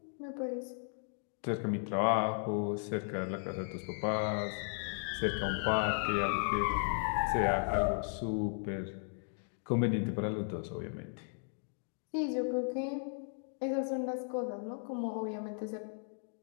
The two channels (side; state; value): right; silent; digital silence